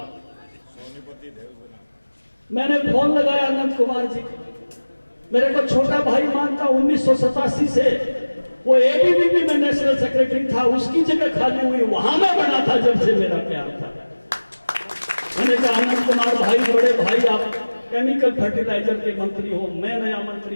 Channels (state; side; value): inverted; both; correlation -1.00